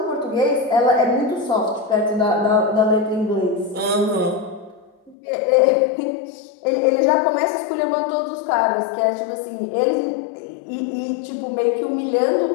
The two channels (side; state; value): right; drops out; at 5.2 s